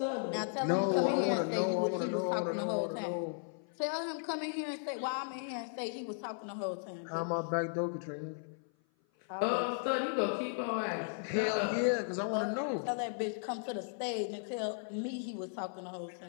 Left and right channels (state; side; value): silent; right; 54 dB below the other